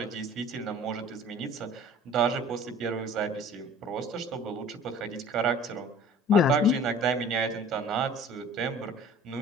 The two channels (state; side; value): normal; both; correlation 0.46